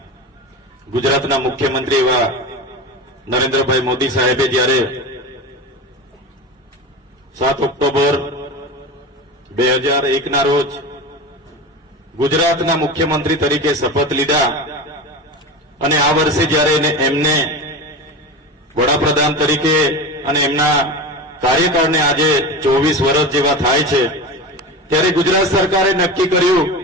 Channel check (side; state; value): both; normal; correlation 0.27